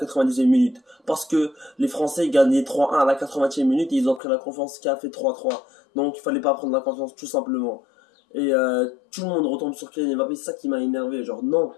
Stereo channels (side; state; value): right; drops out; at 4.2 s